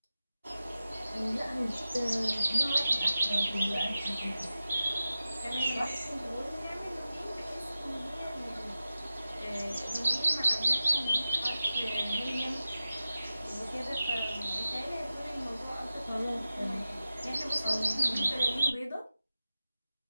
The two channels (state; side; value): inverted; both; correlation -0.94